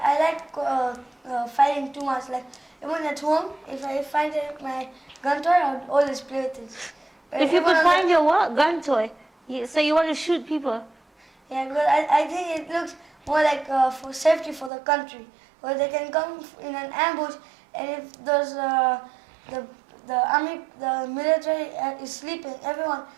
like fighting too much. Like even at home, if I find my gun toy, I would always play with it. If you Even could on find your what? Gun toy. So you want to shoot people? Yeah, because I think it looks more like for safety for the country. Where they can come in an ambush, and if there's the army, the military is sleeping, everyone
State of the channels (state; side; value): drops out; left; at 14.7 s